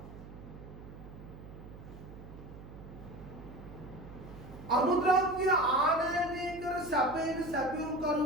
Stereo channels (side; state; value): right; noise; hum, 15 dB below the sound